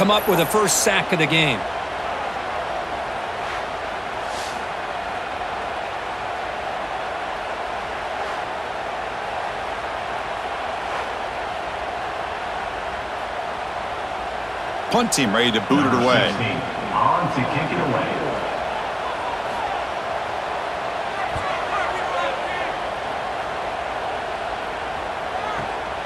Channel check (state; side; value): identical; both; correlation 1.00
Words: up with the 1st sack of the game. Punt team ready to boot it away. On to kick it away.